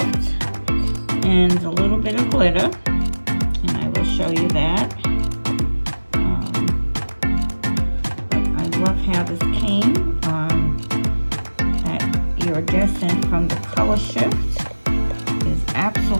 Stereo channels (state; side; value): inverted; both; correlation -1.00